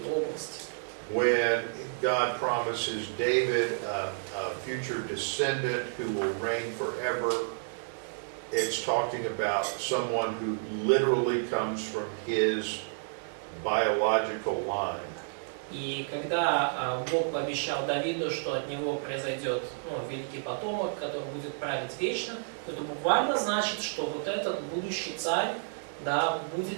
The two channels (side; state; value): left; silent; digital silence